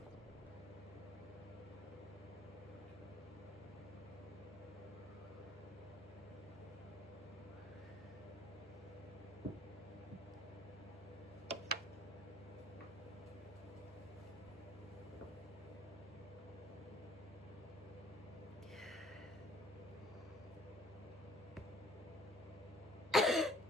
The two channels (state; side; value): normal; both; correlation 0.57